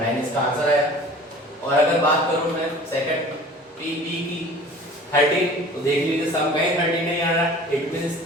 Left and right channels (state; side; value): normal; both; correlation 0.45